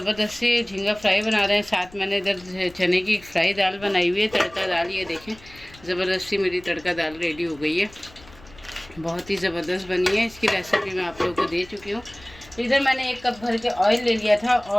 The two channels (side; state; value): left; noise; rumble, 23 dB below the sound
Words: सी झींगा फ्राई बना रहे हैं। साथ मैंने इधर चने की फ्राई दाल बनाई हुई है, तड़का दाल। ये देखें, ज़बरदस्त सी मेरी तड़का दाल रेडी हो गई है, बहुत ही ज़बरदस्त बनी है। इसकी रेसिपी मैं आप लोगों को दे चुकी हूँ। इधर मैंने 1 कप भर के ऑयल ले लिया था